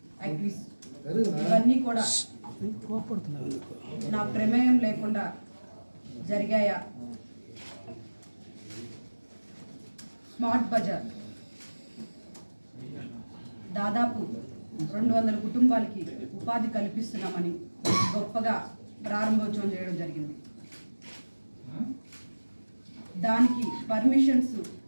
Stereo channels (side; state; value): both; inverted; correlation -1.00